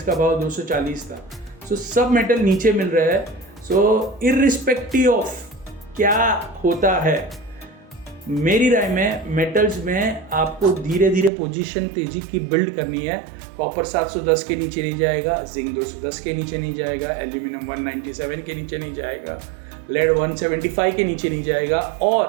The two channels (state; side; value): drops out; left; at 11.3 s